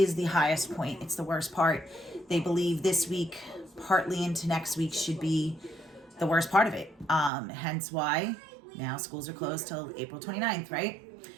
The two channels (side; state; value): left; drops out; at 7.3 s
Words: the highest point. It's the worst part. They believe this week, partly into next week, should be the worst part of it. Hence why now schools are closed till April 29th, right?